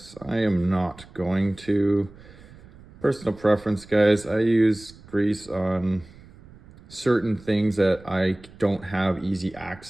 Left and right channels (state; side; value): noise; right; rumble, 22 dB below the sound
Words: I am not going to. Personal preference, guys. I use grease on certain things that I don't have easy